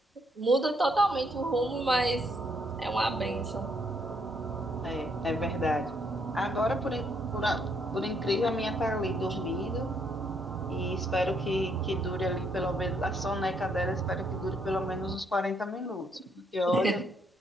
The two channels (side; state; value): both; normal; correlation 0.72